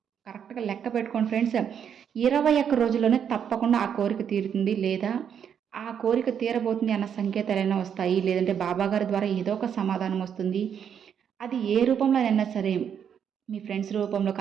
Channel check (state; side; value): quieter; left; 8.1 dB